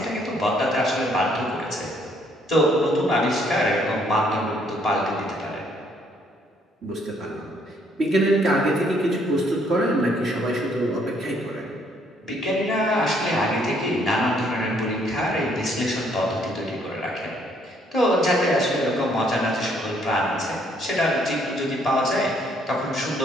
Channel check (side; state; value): both; normal; correlation 0.67